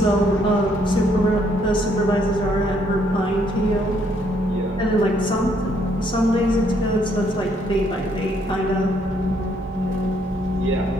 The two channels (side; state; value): both; normal; correlation 0.69